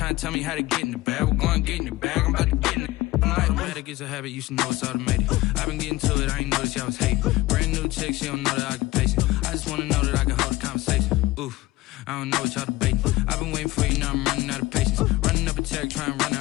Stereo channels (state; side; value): quieter; right; 18.6 dB